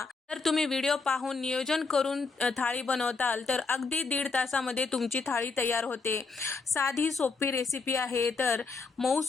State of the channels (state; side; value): quieter; right; 4.3 dB